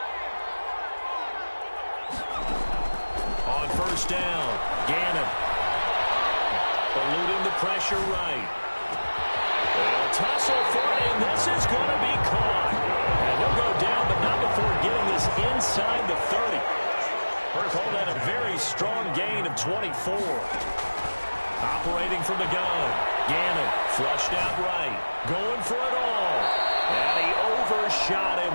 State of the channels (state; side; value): inverted; both; correlation -1.00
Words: On 1st down, Gannon. Eluding the pressure right. They'll tussle for it, and this is going to be caught. And he'll go down, but not before getting this inside the 30. Call that a very strong gain of 24. Operating from the gun. Gannon flushed out right. Going for it all. And he overshot